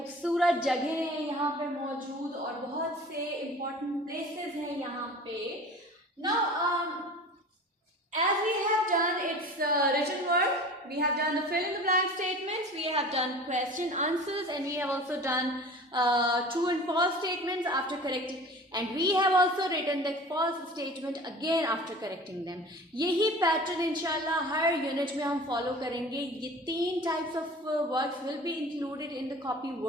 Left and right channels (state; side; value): normal; both; correlation 0.40